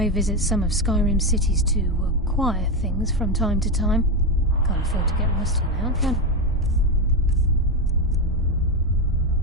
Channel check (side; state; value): both; normal; correlation 0.11